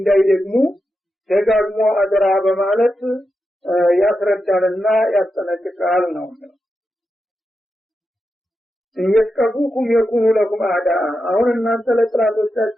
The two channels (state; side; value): normal; both; correlation 0.88